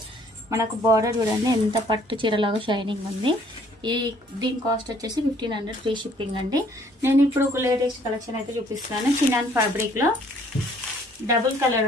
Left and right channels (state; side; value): normal; both; correlation 0.61